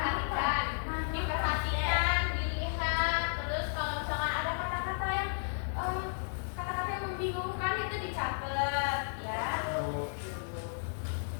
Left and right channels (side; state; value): right; silent; 56 dB below the other